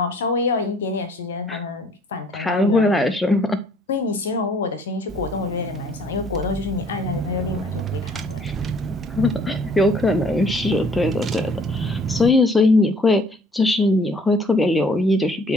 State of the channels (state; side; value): normal; both; correlation 0.59